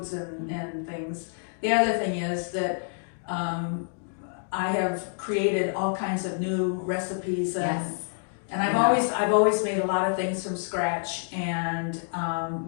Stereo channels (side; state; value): right; silent; digital silence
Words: and things. The other thing is that I have created all kinds of new recipes, Yes. and I've always made a lot of things from scratch, and